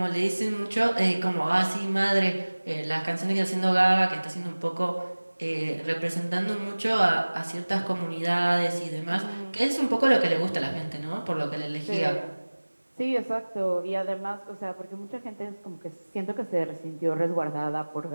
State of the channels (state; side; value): inverted; both; correlation -1.00